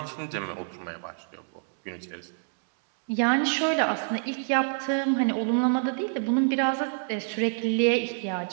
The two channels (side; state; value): left; silent; 60 dB below the other